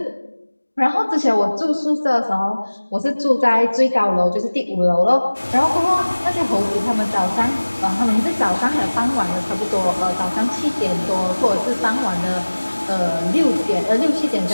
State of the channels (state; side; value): inverted; both; correlation -1.00